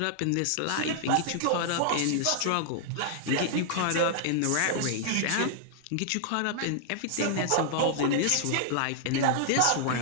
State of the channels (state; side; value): different; both; correlation -0.01